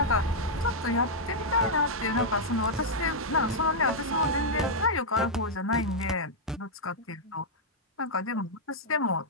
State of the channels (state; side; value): normal; both; correlation -0.05